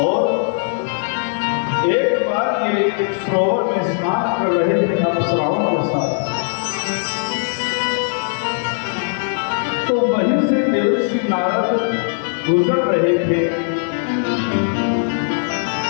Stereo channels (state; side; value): silent; right; 63 dB below the other